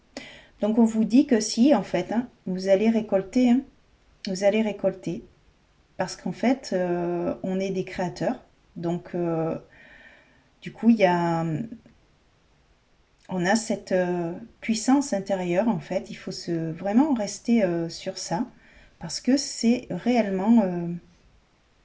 Donc on vous dit que si en fait, hein, vous allez récolter, hein, vous allez récolter, parce qu'en fait, on est des créateurs. Donc du coup, on a cette puissance intérieure en fait. Il faut vraiment rester sur ça, parce que c'est réellement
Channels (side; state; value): both; identical; correlation 1.00